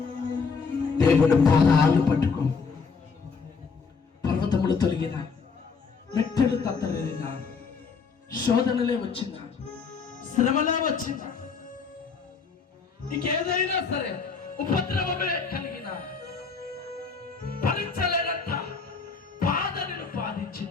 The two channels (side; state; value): right; quieter; 5.2 dB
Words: దేవుడు పాదాలు పట్టుకో. పర్వతములు తొలగిన, మెట్టెలు తత్తరిన, శోధనలే వచ్చిందా, శ్రమలే వచ్చిందా, నీకేదైనా సరే ఉపద్రవమే కలిగిన, భరించలేనంత బాధ నిన్ను